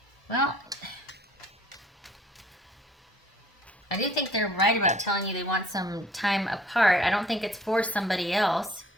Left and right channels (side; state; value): both; normal; correlation 0.55